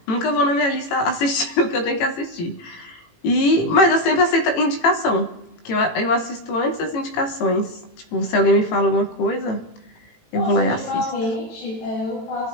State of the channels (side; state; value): right; late; 18 ms